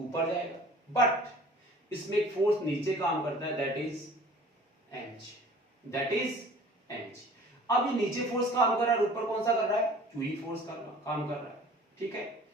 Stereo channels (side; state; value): both; normal; correlation 0.48